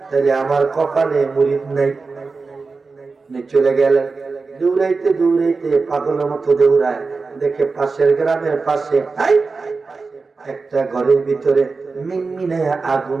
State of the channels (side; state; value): left; quieter; 4.2 dB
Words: তাহলে আমার কপালে মুরিদ নাই। চলে গেলেন, দৌড়াইতে দৌড়াইতে পাগলের মতো দৌড়ায়, দেখে পাশের গ্রামের পাশে একটা ঘরের ভিতরে মিনমিনে আগুন